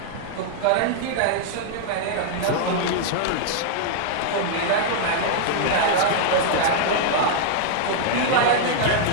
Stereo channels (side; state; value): both; different; correlation -0.01